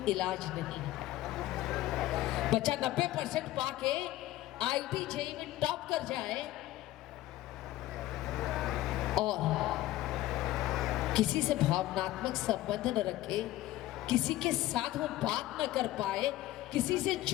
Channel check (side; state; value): right; quieter; 15.8 dB